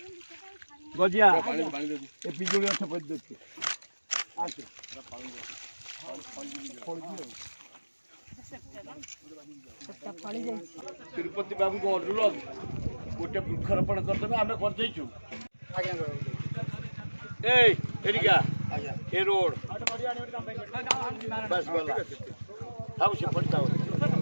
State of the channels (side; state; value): both; inverted; correlation -1.00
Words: गजिया पानी पानी दे ए पिजुली गछ पद दे आके तिरुपति बाबू को अनुरोध गोटे वृक्षारोपण करदेवे आम कर ए रोड बस गला हाउ से पड़ता हो